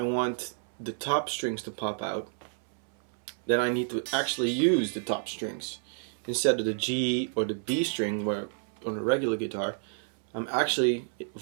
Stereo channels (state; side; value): silent; left; 58 dB below the other